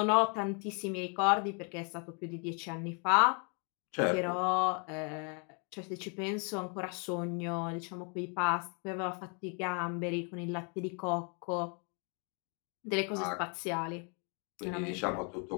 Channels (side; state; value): right; quieter; 37.2 dB